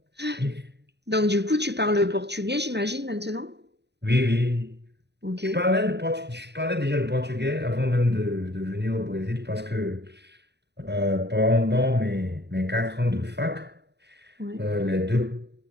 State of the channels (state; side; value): late; left; 0.50 ms